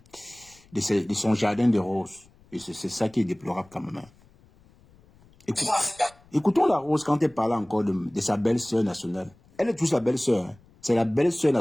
son jardin de roses. Et c'est ça qui est déplorable quand même. Hein. Écoutons la Rose quand elle parle encore de sa belle-sœur nationale. Elle est tous la belle-sœur. Hein. C'est la belle-sœur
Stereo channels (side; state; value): left; noise; rumble, 29 dB below the sound